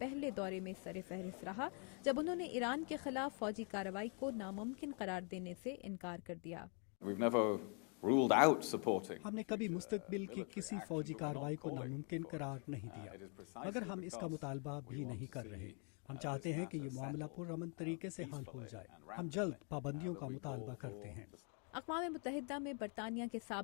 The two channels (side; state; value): right; quieter; 38.8 dB